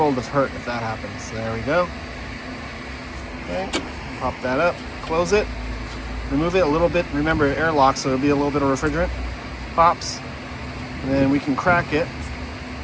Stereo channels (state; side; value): identical; both; correlation 1.00